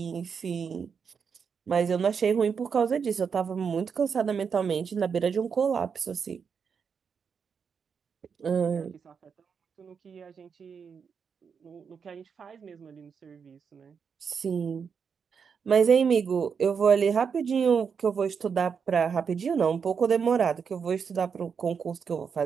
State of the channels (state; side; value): quieter; left; 6.3 dB